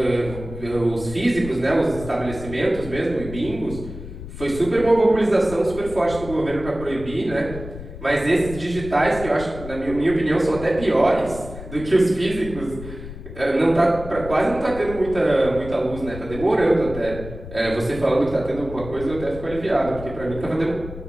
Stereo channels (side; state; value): left; noise; rumble, 12 dB below the sound